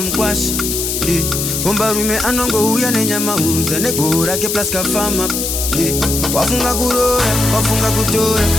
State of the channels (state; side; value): noise; left; hiss, 2 dB below the sound